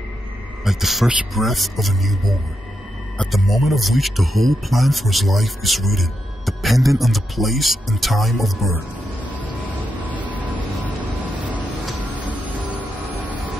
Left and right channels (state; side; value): normal; both; correlation 0.84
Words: like the first breath of a newborn, at the moment of which the whole plan for his life is written, dependent on the place and time of birth.